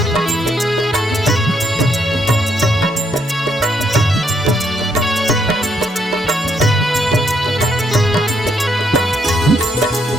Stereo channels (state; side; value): normal; both; correlation 0.73